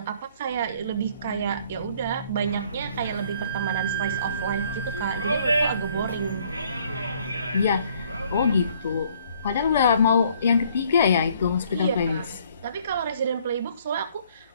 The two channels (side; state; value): both; inverted; correlation -0.62